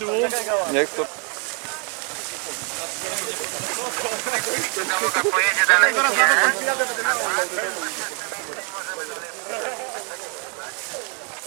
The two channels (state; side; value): quieter; left; 37.6 dB